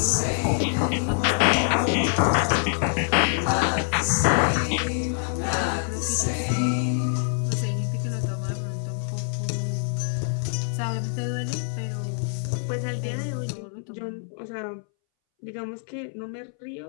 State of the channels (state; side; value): silent; right; 61 dB below the other